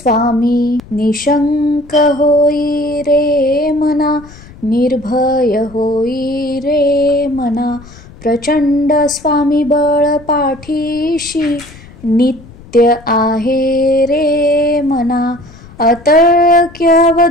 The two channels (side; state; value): left; noise; rumble, 20 dB below the sound